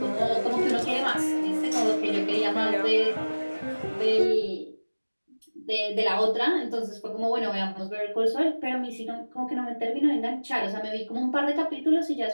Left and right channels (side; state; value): both; inverted; correlation -1.00